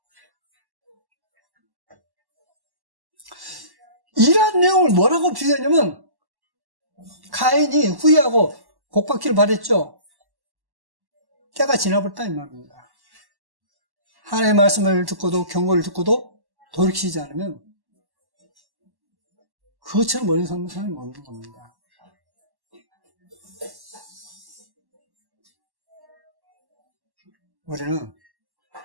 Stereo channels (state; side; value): late; left; 1.1 ms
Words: 이러한 내용을 뭐라고 비유하냐면, 가인이 후회하고 복받기를 바랬죠. 때가 지나버렸다 이 말입니다. 하나님의 말씀을 듣고도 경고를 듣고도 돌이키지 않으면 그것처럼 멀리 서는 사람이 없는 겁니다. 우리는